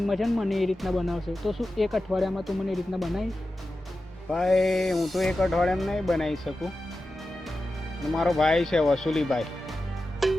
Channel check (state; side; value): normal; both; correlation 0.92